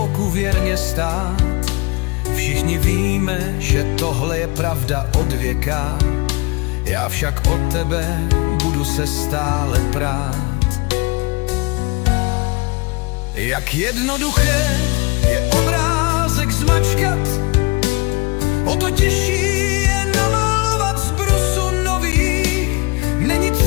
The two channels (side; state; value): right; quieter; 26.6 dB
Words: věrně stát. Všichni víme, že tohle je pravda od věka, já však od tebe budu se stále prát. Jak jednoduché je obrázek zmačkat, o to těžší je namalovat z brusu nový. Není